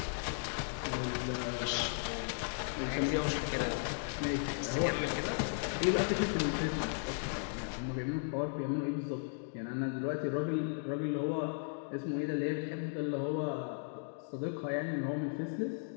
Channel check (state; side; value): silent; right; digital silence